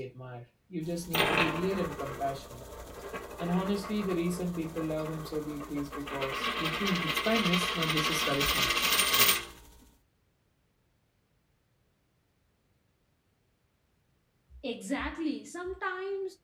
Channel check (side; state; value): both; identical; correlation 1.00